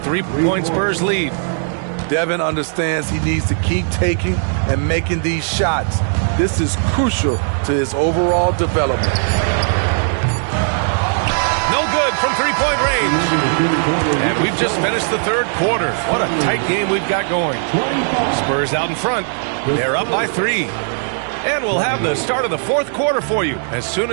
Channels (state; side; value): silent; left; digital silence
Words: Spurs lead. Devin understands he needs to keep taking and making these shots. This is crucial to his overall development. No good from 3-point range. And we've just finished the third quarter. What a tight game we've got going. Spurs out in front. They're up by 3. And we'll have the start of the fourth quarter for you as soon